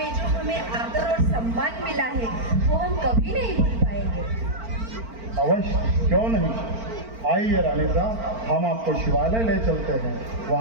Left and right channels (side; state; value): left; late; 4.4 ms